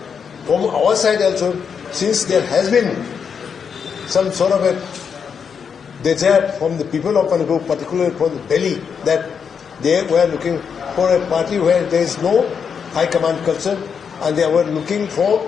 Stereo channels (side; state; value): right; quieter; 6.7 dB